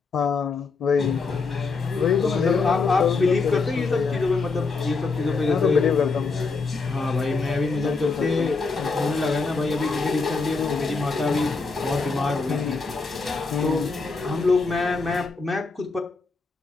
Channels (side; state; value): right; quieter; 4.2 dB